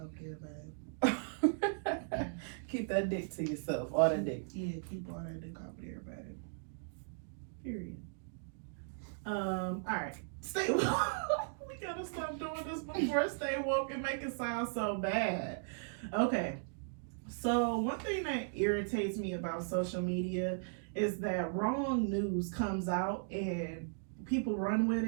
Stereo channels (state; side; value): silent; left; digital silence